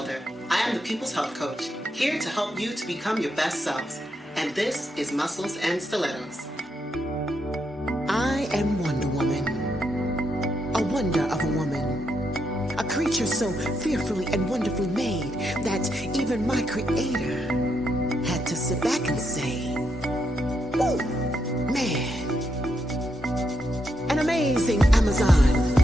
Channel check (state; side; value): normal; both; correlation 0.80